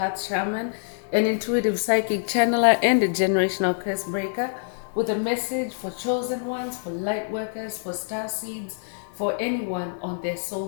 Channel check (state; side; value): silent; right; 61 dB below the other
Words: Shaman, an intuitive psychic channeler, and a generational curse breaker with a message for chosen ones, for light workers, for star seeds, for anyone on their